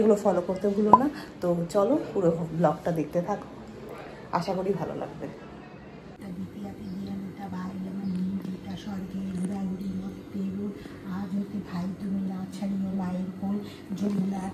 ফলো করতে ভুলো না। তো চলো পুরো ব্লগটা দেখতে থাকো, আশা করি ভালো লাগবে। আজ হতে ভাই তুমি না ছাড়িও মায়ের কোল, যমুনা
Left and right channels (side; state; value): both; identical; correlation 1.00